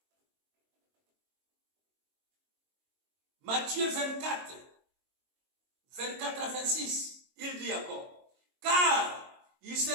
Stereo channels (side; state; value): left; late; 22 ms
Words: Matthieu 24, 24 à 26, il dit encore, car il se